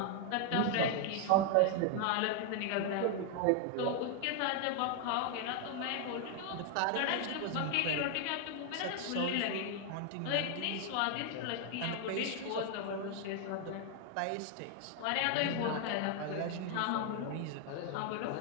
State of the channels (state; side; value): different; both; correlation 0.00